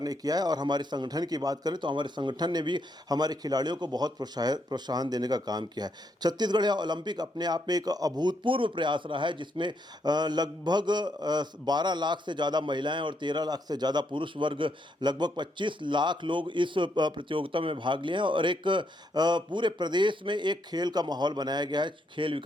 ने किया है और हमारे संगठन की बात करें तो हमारे संगठन ने भी हमारे खिलाड़ियों को बहुत प्रोत्साहन देने का काम किया है। छत्तीसगढ़ या ओलंपिक अपने आप में एक अभूतपूर्व प्रयास रहा है, जिसमें लगभग 12 लाख से ज़्यादा महिलाएँ और 13 लाख से ज़्यादा पुरुष वर्ग, लगभग 25 लाख लोग इस प्रतियोगिता में भाग लिए हैं और एक पूरे प्रदेश में एक खेल का माहौल बनाया गया है। खेल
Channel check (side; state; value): both; normal; correlation 0.77